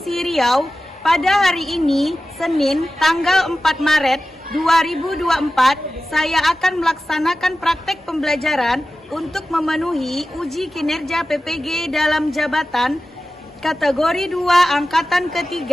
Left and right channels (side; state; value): both; normal; correlation 0.94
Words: Riau. Pada hari ini, Senin, tanggal 4 Maret 2024, saya akan melaksanakan praktek pembelajaran untuk memenuhi uji kinerja PPG dalam jabatan kategori 2 Angkatan